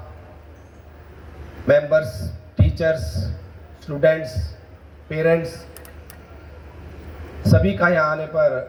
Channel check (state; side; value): identical; both; correlation 1.00